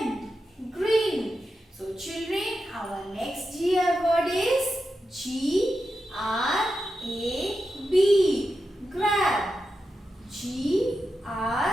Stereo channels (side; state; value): both; normal; correlation 0.89